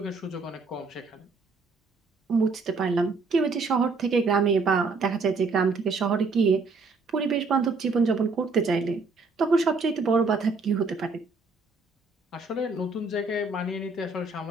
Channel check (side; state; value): left; quieter; 4.0 dB